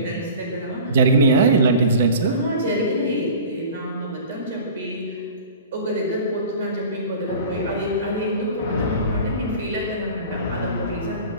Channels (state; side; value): inverted; both; correlation -0.40